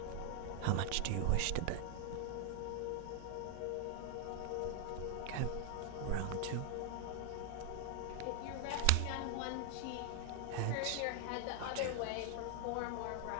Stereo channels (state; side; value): different; both; correlation 0.00